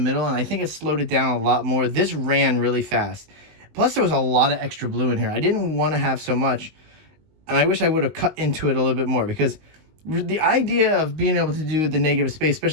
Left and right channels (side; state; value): left; late; 19 ms